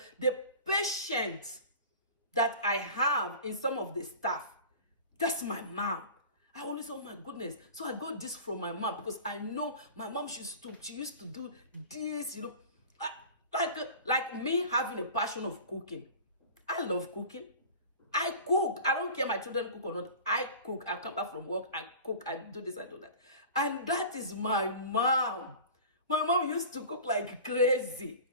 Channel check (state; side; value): inverted; both; correlation -0.38